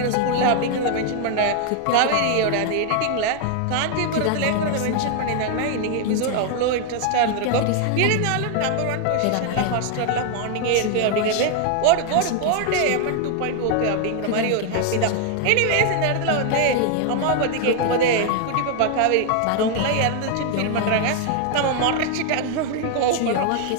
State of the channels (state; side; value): different; both; correlation 0.00